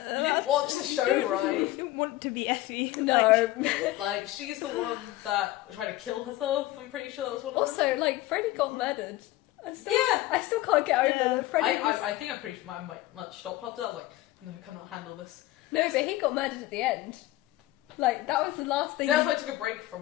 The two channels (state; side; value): quieter; right; 16.7 dB